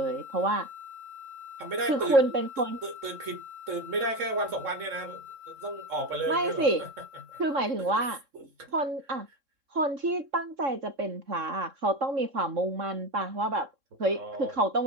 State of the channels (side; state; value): left; late; 3.7 ms